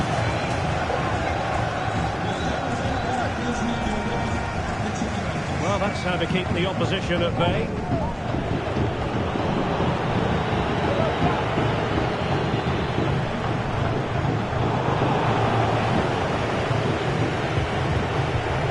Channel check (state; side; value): identical; both; correlation 1.00